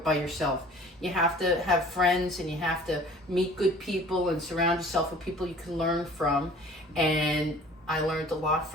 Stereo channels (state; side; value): normal; both; correlation 0.48